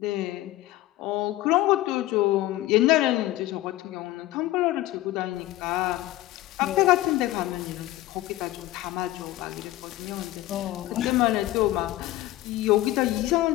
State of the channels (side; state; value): right; quieter; 16.3 dB